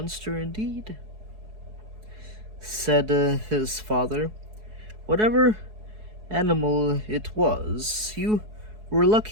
indeed, said his father. Whatever animal it was, you were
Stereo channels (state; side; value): late; left; 4.7 ms